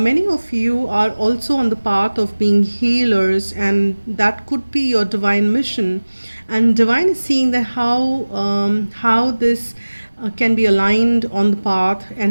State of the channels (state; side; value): inverted; both; correlation -1.00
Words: many of you are also on the path of being healers, and that could be your divine mission. And divine is seeing that how this can be aligned on the path,